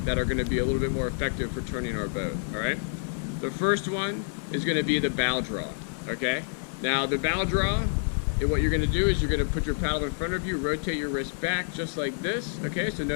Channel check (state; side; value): silent; right; 59 dB below the other